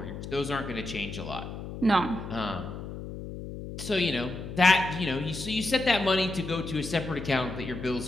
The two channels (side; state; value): left; noise; hum, 9 dB below the sound